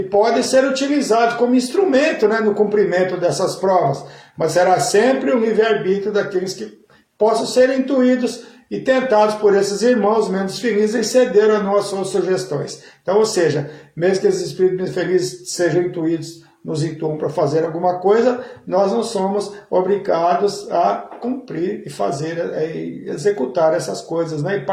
podem ser utilizados como instrumento, né, no cumprimento dessas provas, mas será sempre o livre-arbítrio daqueles que possam ser intuídos e tentados por esses irmãos menos felizes em ceder a nossas sugestões. Então, ou seja, mesmo que esses espíritos menos felizes sejam intuídos, nos intuam para fazer alguma coisa, nós não somos obrigados a cumprir e fazer, executar essas coisas, né, e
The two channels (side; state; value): both; identical; correlation 1.00